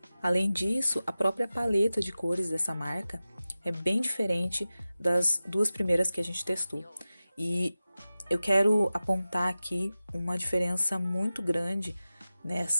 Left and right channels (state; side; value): inverted; both; correlation -0.95